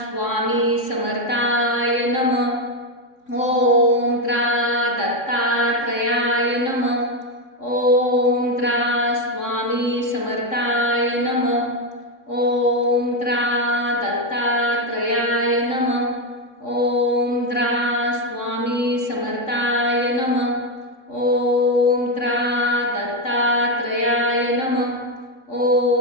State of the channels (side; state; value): right; late; 3.6 ms